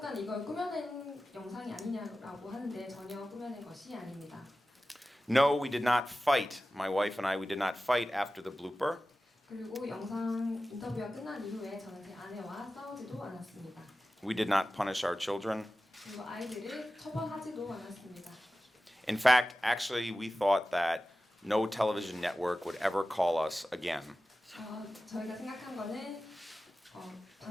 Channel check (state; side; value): normal; both; correlation 0.95